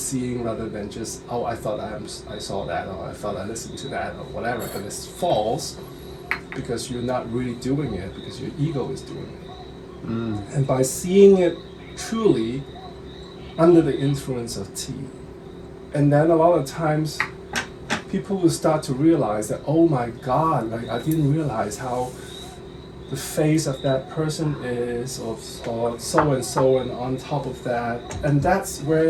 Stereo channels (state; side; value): identical; both; correlation 1.00